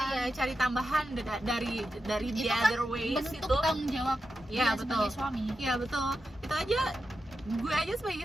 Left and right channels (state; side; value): normal; both; correlation 0.89